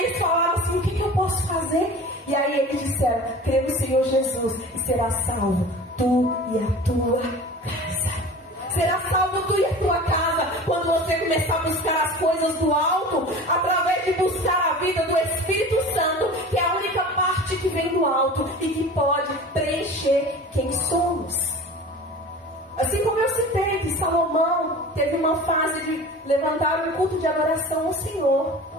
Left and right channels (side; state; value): both; normal; correlation 0.38